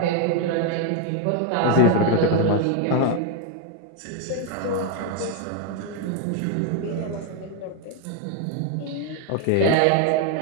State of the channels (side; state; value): both; different; correlation 0.01